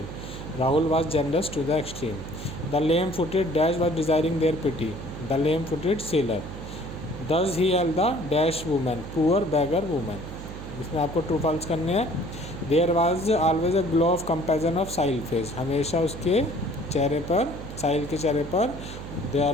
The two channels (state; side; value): noise; right; hum, 10 dB below the sound